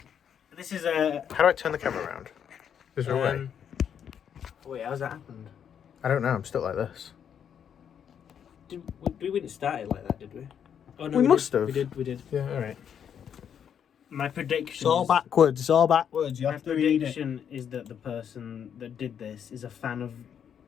This is a... How do I turn the camera around? Is there a way? Wait, how's that happened? I don't know, I'm stuck like this. We didn't start it like that, did we? Oh, no, We must did. have. We did. Yeah, alright. My prediction. It's all backwards, it's all backwards. You My have to read it. prediction is that the person that did this is a fan of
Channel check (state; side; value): quieter; right; 8.3 dB